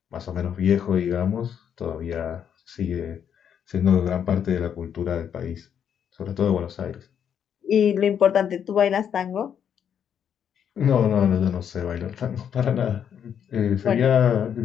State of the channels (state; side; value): quieter; right; 8.5 dB